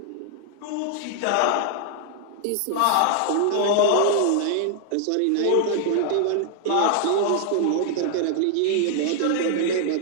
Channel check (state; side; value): different; both; correlation 0.00